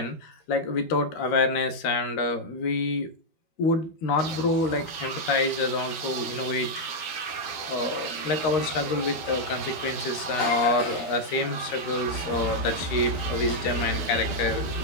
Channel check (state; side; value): late; right; 13 ms